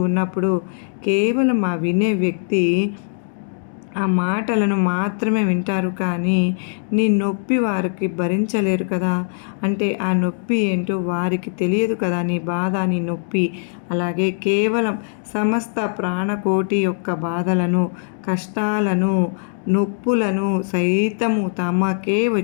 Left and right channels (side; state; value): right; silent; digital silence